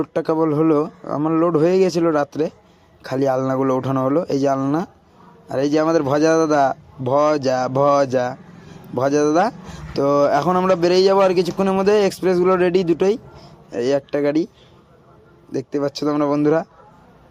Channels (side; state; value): both; identical; correlation 1.00